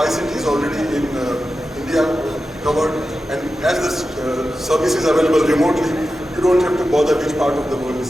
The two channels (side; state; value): both; normal; correlation 0.92